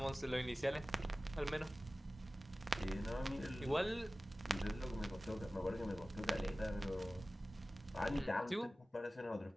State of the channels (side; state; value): both; normal; correlation 0.97